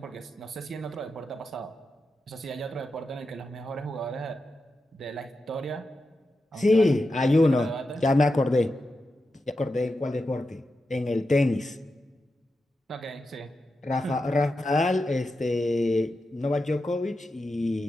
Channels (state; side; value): normal; both; correlation 0.89